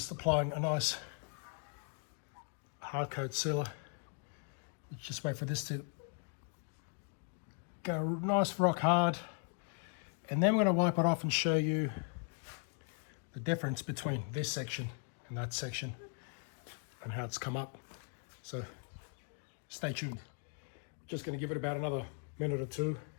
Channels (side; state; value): right; quieter; 39.8 dB